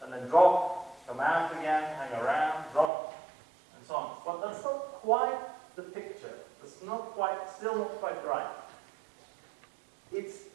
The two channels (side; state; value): left; drops out; at 2.9 s